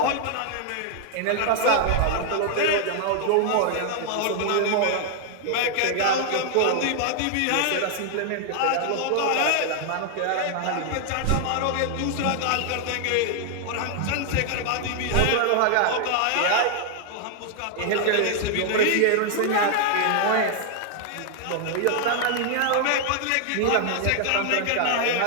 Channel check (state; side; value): different; both; correlation 0.00